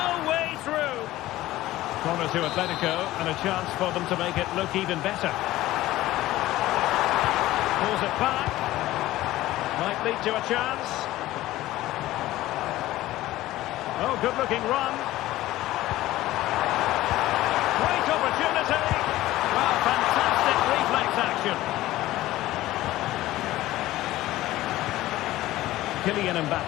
way through. Corner to Atletico and a chance for them to make it look even better. Pulls it back. Might lead to a chance. Oh, good-looking run. Great opportunity. Well, fantastic reflex action. Kylian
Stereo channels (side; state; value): right; quieter; 16.1 dB